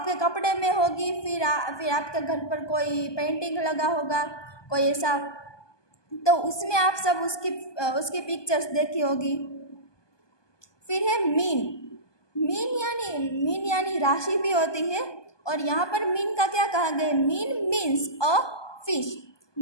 कपड़े में होगी, फिर आपके घर पर कोई पेंटिंग लगा होगा, कोई ऐसा, तो उसमें आप सब उसकी पिक्चर्स देखी होगी। फिर है मीन यानी राशि भी होती है, और यहाँ पर मीन का क्या कहा गया, mean means a fish.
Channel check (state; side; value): late; right; 1.2 ms